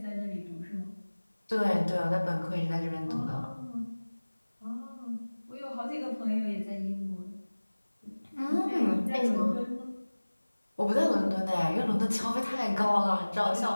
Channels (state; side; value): inverted; both; correlation -1.00